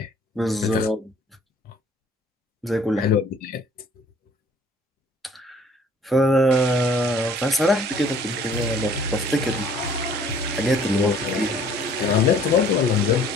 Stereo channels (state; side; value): normal; both; correlation 0.55